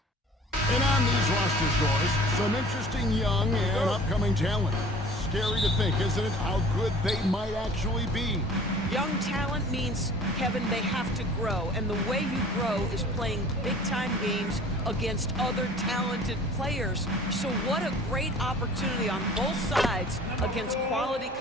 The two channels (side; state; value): both; normal; correlation 0.47